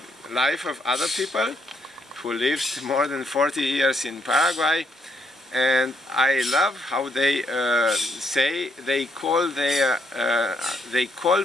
life of other people who lived more than 40 years in Paraguay, and I love how they say they call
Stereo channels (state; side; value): normal; both; correlation 0.73